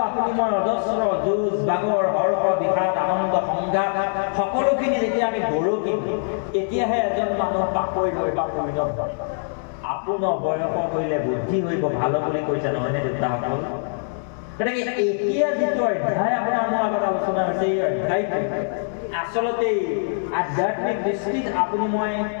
আপুনি মই অজস্ৰ যুঁজ বাগৰ হৰ্ষ বিষাদ আনন্দ সংঘাত সকলোখিনি যেতিয়া আমি গৰকি তেতিয়াহে এজন মানুহ পাকৈত হয় বা পৰিণত হয় আপোনাৰ বয়স হইলে বুদ্ধি হইব ভালো বুলি কৈছে নহয়নে দেউতাসকল গতিকে এতিয়া যিটো অধ্যায় আপোনাৰ মোৰ আগত আলোচনা হৈছে এই অধ্যায়টো আচলতে আধ্যাত্মিক দৃষ্টিত আপুনি মই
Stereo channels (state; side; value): silent; right; digital silence